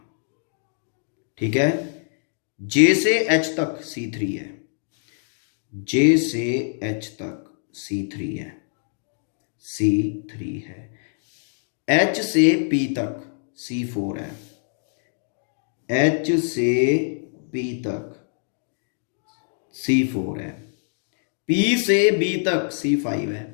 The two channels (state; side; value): silent; right; digital silence